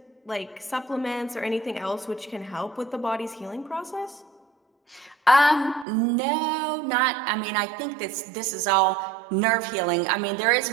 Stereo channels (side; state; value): left; drops out; at 5.9 s